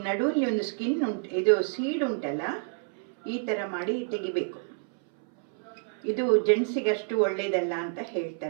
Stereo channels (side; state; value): left; silent; 59 dB below the other